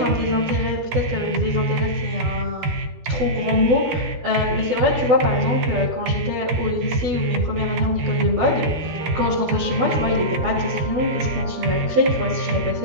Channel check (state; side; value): late; left; 13 ms